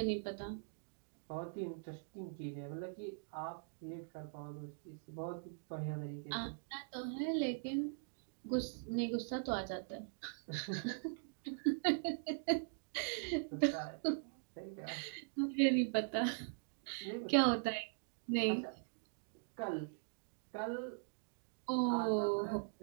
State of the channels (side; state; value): left; silent; digital silence